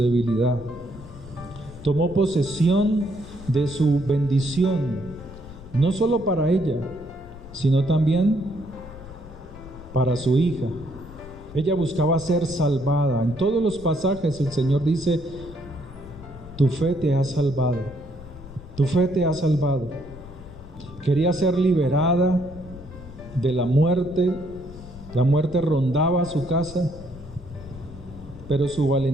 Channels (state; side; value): noise; left; rumble, 17 dB below the sound